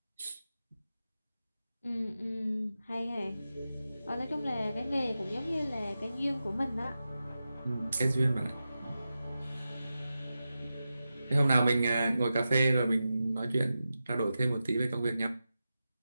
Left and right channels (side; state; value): both; inverted; correlation -0.92